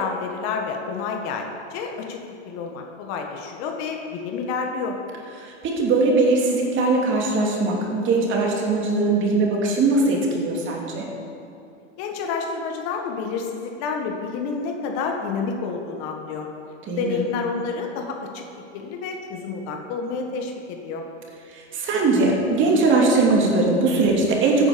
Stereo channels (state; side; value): normal; both; correlation 0.23